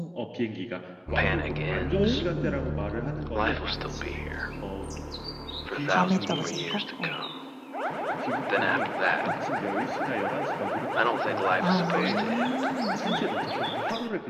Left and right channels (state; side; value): identical; both; correlation 1.00